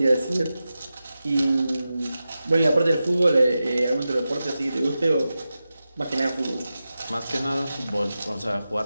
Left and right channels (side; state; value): both; inverted; correlation -0.93